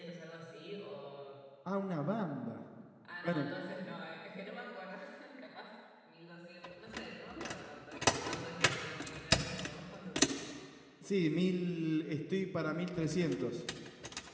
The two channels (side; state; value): both; identical; correlation 1.00